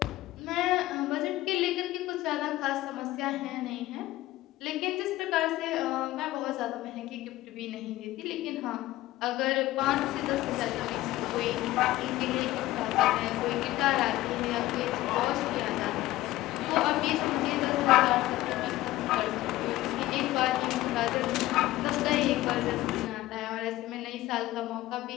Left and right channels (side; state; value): right; quieter; 16.5 dB